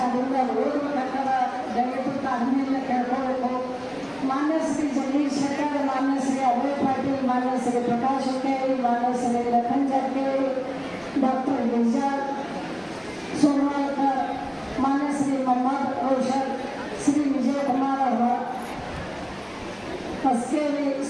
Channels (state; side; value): identical; both; correlation 1.00